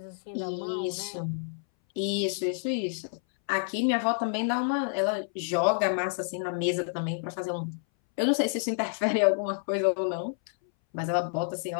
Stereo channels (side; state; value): right; silent; 59 dB below the other